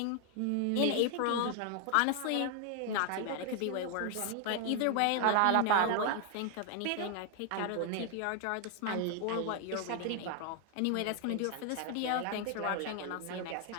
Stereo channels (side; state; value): both; different; correlation 0.00